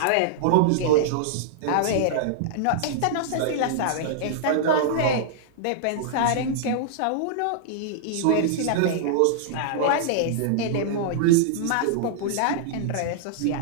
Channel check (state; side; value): different; both; correlation -0.01